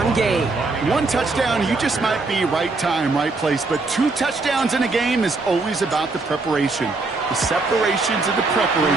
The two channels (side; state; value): left; quieter; 3.6 dB